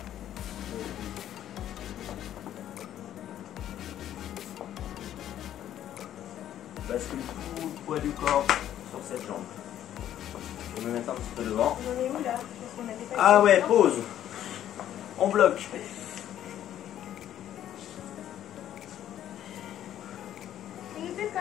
Bascule tout le poids du corps sur cette jambe. Je vais me mettre un petit peu devant. On en est où là? Parce qu'on avait pas Ah ouais, pause. On bloque. Tu nous fais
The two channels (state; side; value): quieter; right; 11.3 dB